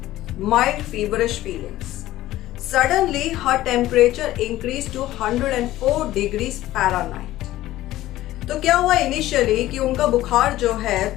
mild feverish feelings. Suddenly, her temperature increased to 104 degrees Fahrenheit. तो क्या हुआ इनिशियली कि उनका बुखार जो है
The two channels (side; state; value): right; quieter; 15.3 dB